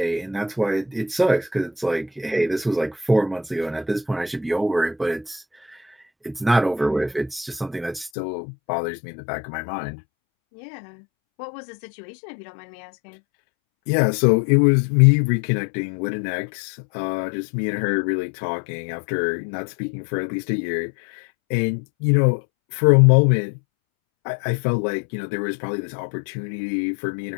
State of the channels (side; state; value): right; drops out; at 8.1 s